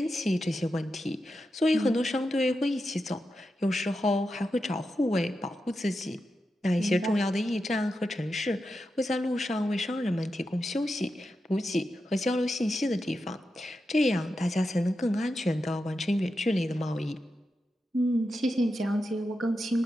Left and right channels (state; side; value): normal; both; correlation 0.89